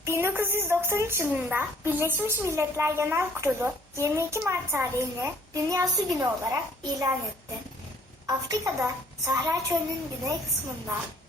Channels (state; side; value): normal; both; correlation 0.60